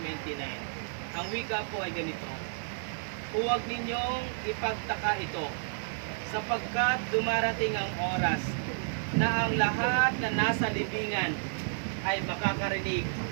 29. Ang wika po ay ganito: huwag ninyong ipagtaka ito, sapagkat dumarating ang oras na ang lahat na nasa libingan ay makakarinig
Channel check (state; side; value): silent; left; digital silence